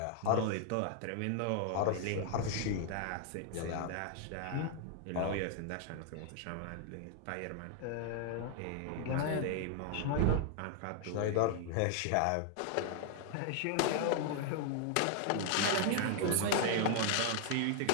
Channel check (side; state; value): both; different; correlation 0.00